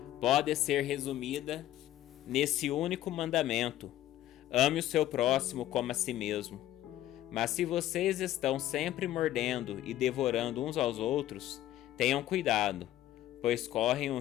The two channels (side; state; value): right; quieter; 13.5 dB